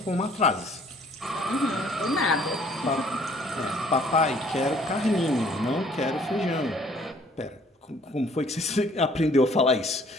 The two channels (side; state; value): both; normal; correlation 0.59